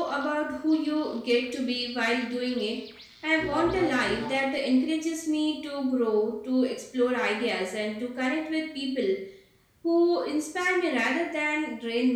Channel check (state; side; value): identical; both; correlation 1.00